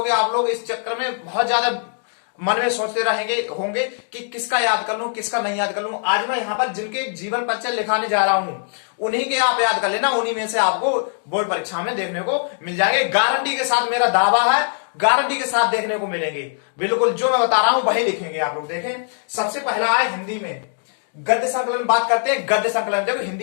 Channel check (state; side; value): silent; right; 65 dB below the other